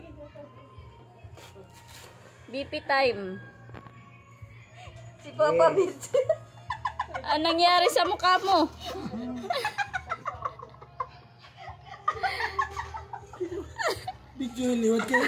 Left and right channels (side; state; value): both; identical; correlation 1.00